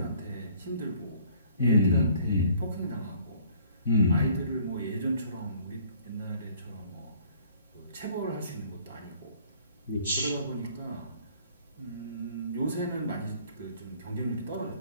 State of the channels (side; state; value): both; inverted; correlation -0.57